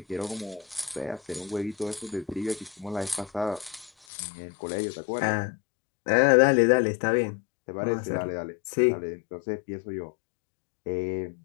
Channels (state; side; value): drops out; right; at 3.9 s